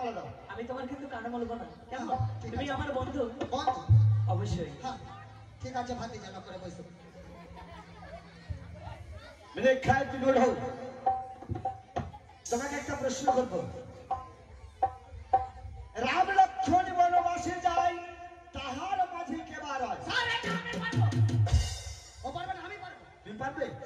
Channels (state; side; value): identical; both; correlation 1.00